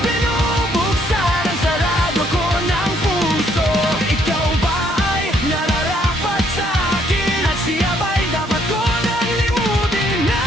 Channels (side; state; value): both; normal; correlation 0.68